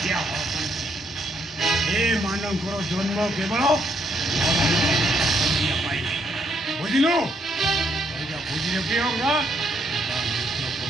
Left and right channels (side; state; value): both; normal; correlation 0.73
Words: ଏମାନଙ୍କର ଜନ୍ମ କେବଳ ବୁଝିଲୁ ବୁଝିଲେ କି ହବ